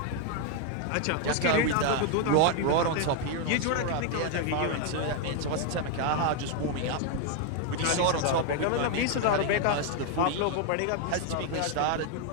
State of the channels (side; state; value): both; different; correlation 0.01